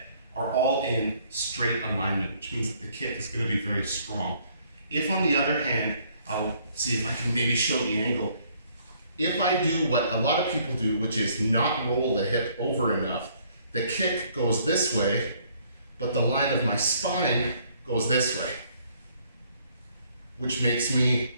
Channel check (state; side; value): inverted; both; correlation -0.64